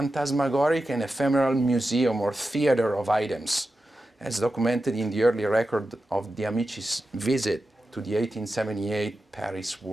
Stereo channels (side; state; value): both; normal; correlation 0.91